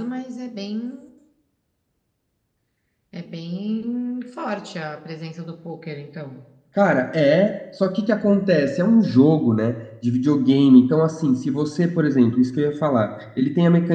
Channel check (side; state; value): both; identical; correlation 1.00